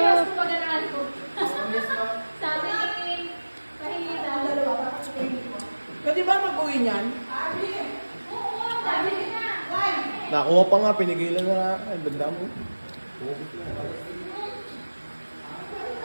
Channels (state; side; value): inverted; both; correlation -1.00